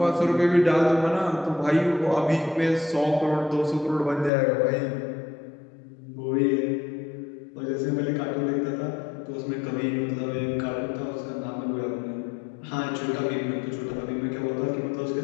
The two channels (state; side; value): drops out; right; at 4.3 s